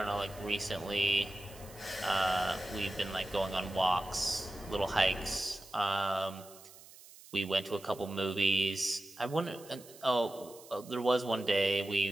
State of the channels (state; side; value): noise; right; hiss, 20 dB below the sound